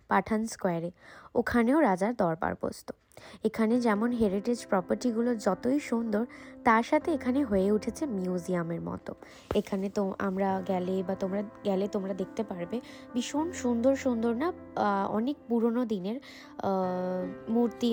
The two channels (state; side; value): identical; both; correlation 1.00